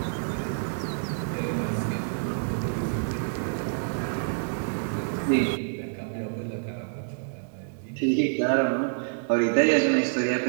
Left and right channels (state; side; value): silent; left; digital silence